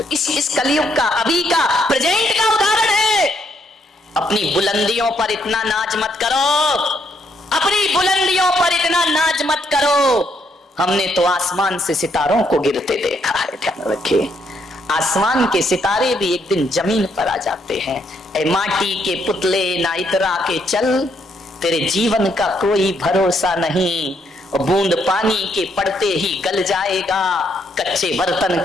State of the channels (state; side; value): normal; both; correlation 0.74